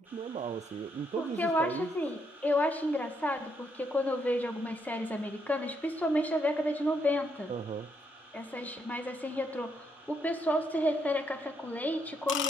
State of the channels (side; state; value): both; normal; correlation 0.76